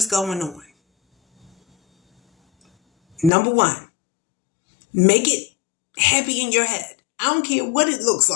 going on. Number one, make it happy in your head. I don't care what it looks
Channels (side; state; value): right; drops out; at 3.3 s